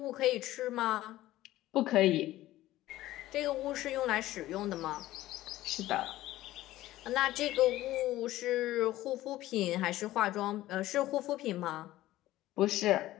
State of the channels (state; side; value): quieter; right; 15.5 dB